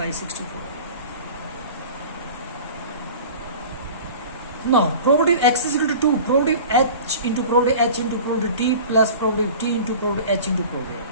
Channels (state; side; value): inverted; both; correlation -0.40